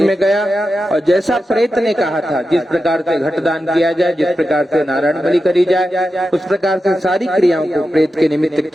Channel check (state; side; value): normal; both; correlation 0.90